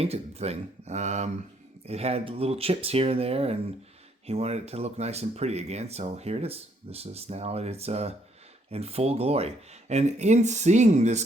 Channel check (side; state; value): both; normal; correlation 0.69